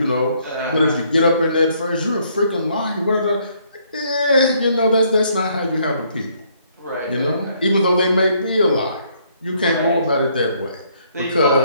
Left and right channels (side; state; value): both; inverted; correlation -0.68